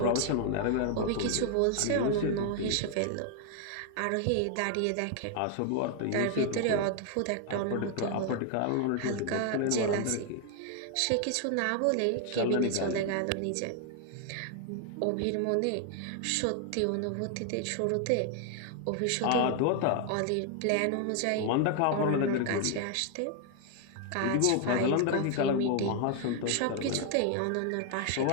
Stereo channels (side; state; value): both; different; correlation 0.00